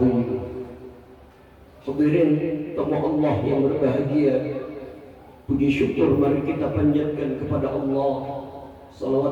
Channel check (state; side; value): identical; both; correlation 1.00